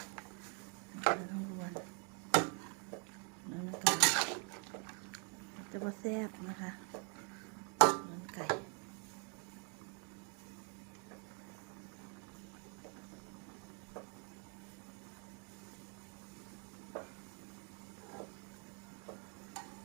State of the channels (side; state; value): left; quieter; 37.9 dB